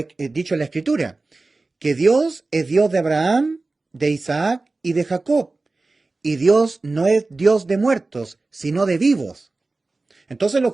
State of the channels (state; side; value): quieter; left; 3.4 dB